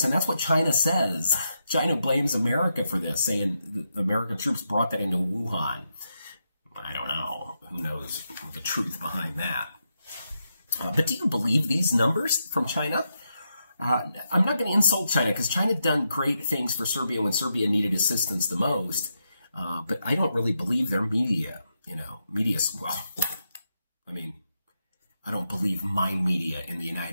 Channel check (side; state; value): both; inverted; correlation -0.84